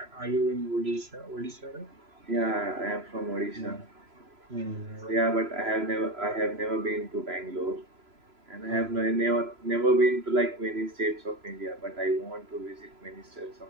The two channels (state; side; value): late; left; 3.0 ms